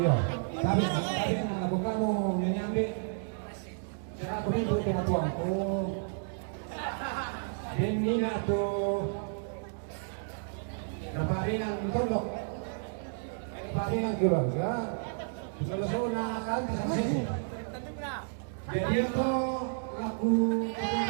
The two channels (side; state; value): left; silent; digital silence